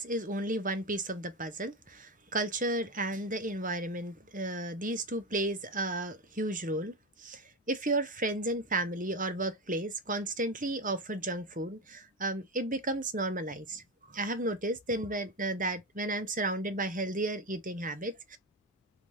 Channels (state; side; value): normal; both; correlation 0.17